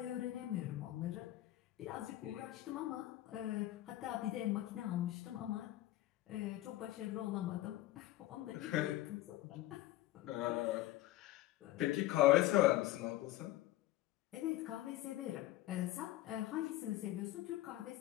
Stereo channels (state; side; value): quieter; right; 15.7 dB